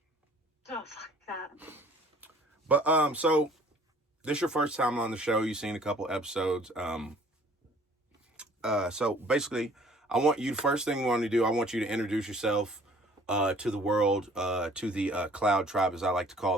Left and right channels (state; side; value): normal; both; correlation 0.54